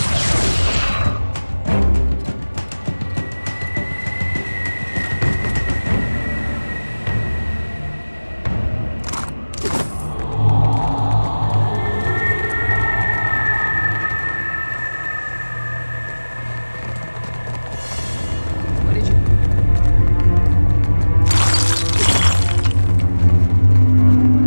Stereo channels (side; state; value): both; inverted; correlation -1.00